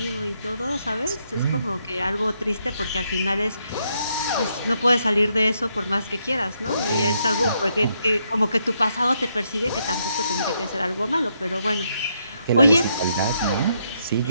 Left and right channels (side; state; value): both; inverted; correlation -0.77